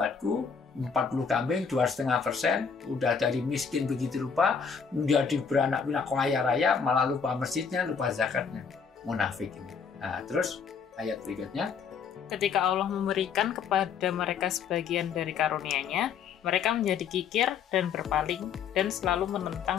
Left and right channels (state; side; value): quieter; right; 6.3 dB